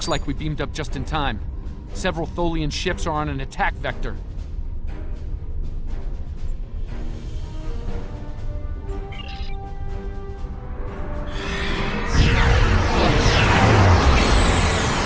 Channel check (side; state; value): both; identical; correlation 1.00